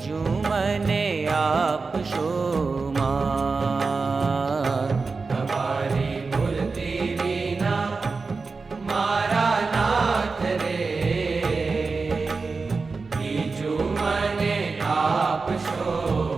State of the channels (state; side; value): quieter; left; 4.3 dB